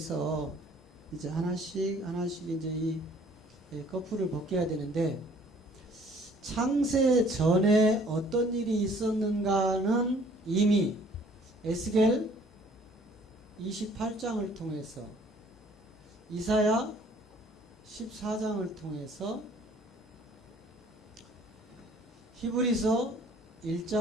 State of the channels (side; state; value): both; normal; correlation 0.57